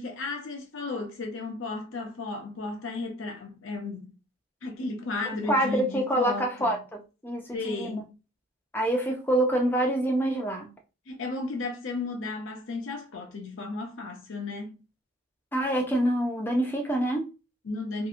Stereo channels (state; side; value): normal; both; correlation 0.56